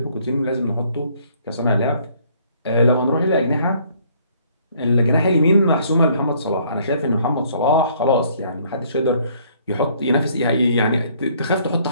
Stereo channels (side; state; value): both; inverted; correlation -0.62